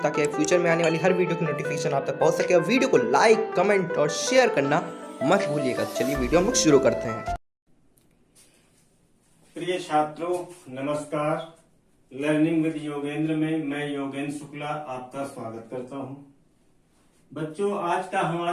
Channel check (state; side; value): identical; both; correlation 1.00